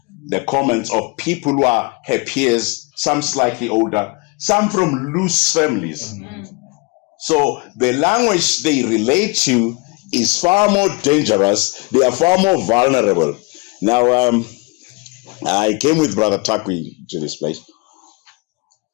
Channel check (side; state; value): right; quieter; 26.9 dB